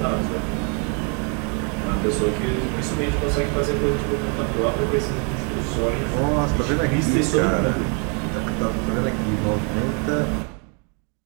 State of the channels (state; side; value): quieter; left; 37.4 dB